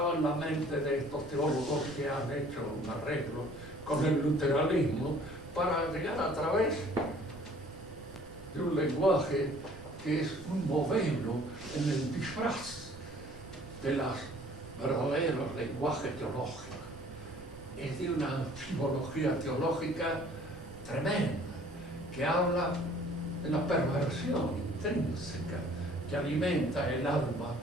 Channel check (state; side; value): noise; right; rumble, 19 dB below the sound